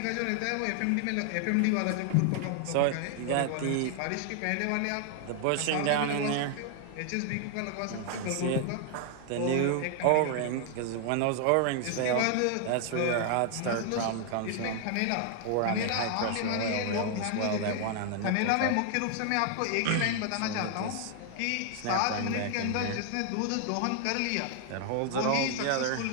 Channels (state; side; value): different; both; correlation 0.00